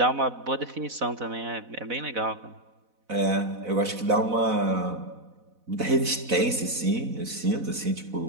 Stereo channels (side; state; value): left; late; 4.0 ms